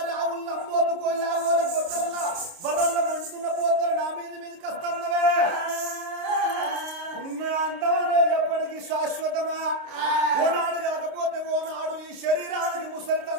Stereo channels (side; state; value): left; late; 29 ms